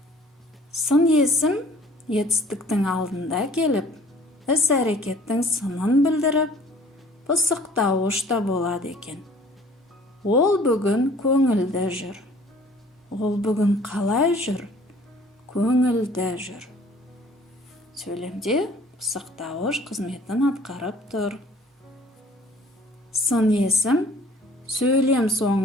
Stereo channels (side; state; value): both; normal; correlation 0.53